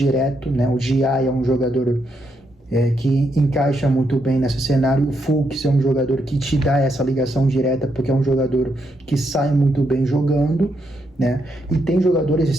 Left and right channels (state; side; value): normal; both; correlation 0.79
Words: né? O Gia é um jogador que encaixa muito bem nesse cenário. O Fux é um jogador que te dá essa ligação direta, porque é um jogador que sai muito bem jogando, né? E tem jogadores